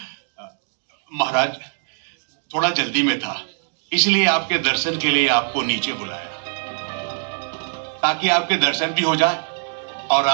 महाराज, थोड़ा जल्दी में था, इसलिए आपके दर्शन के लिए आपको नीचे बुलाया, ताकि आपके दर्शन भी हो जाए और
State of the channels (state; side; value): silent; left; digital silence